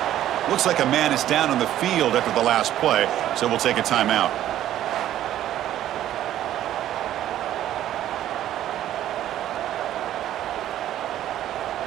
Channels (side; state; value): left; quieter; 12.4 dB